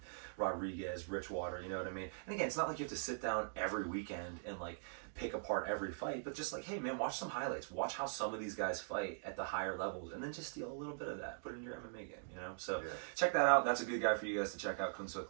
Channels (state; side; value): silent; left; digital silence